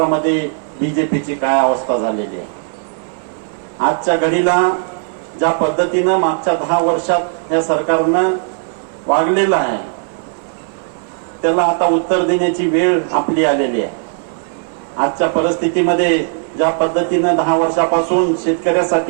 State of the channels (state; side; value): silent; left; 58 dB below the other